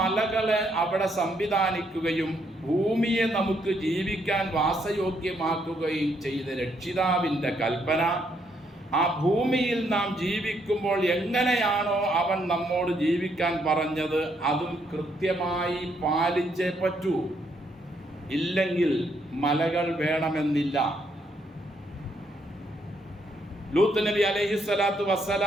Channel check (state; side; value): normal; both; correlation 0.73